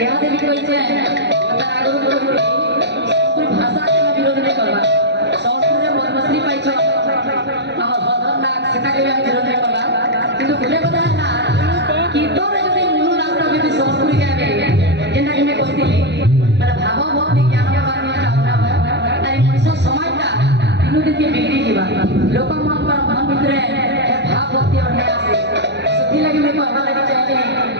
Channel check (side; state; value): left; late; 0.50 ms